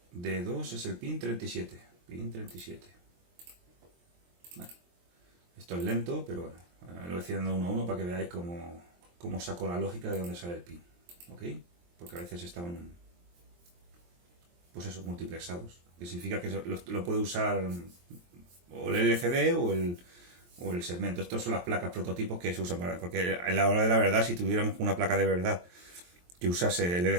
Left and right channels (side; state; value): left; late; 23 ms